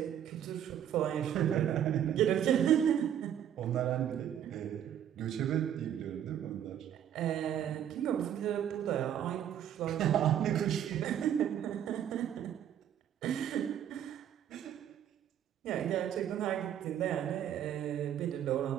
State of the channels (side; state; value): left; quieter; 10.1 dB